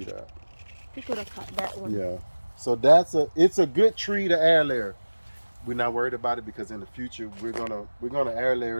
that. You could have cut that one. Yeah. So it's a good tree to air layer. We're not worried about it because in the future we're gonna air layer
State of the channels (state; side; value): inverted; both; correlation -1.00